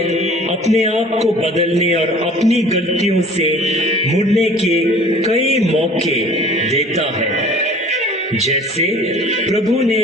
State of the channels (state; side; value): normal; both; correlation 0.48